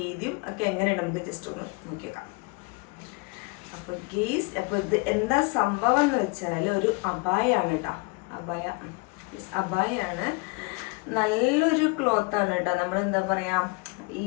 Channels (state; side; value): quieter; right; 28.4 dB